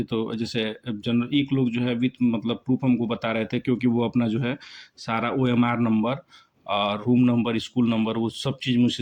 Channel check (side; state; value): both; identical; correlation 1.00